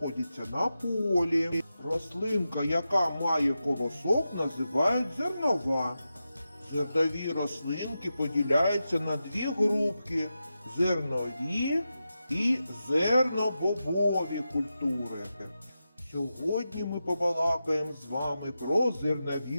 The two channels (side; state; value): both; inverted; correlation -0.90